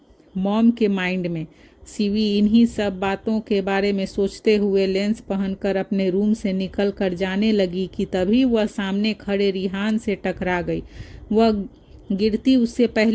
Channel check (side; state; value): both; identical; correlation 1.00